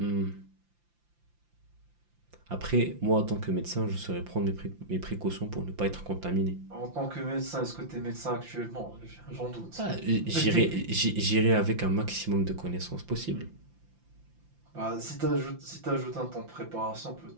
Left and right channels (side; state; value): left; late; 5.8 ms